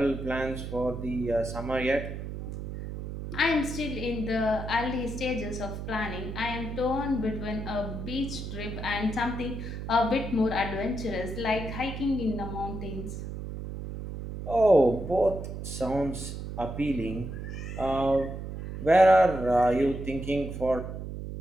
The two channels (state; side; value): noise; right; hum, 7 dB below the sound